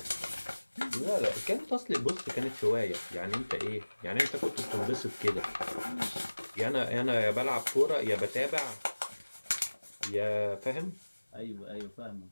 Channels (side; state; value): both; inverted; correlation -1.00